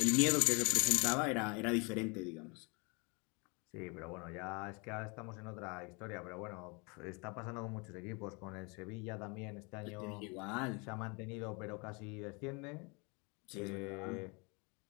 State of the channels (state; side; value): quieter; right; 30.7 dB